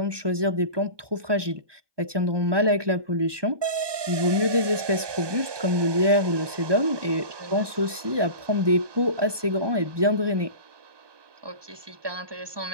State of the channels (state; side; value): late; left; 1.2 ms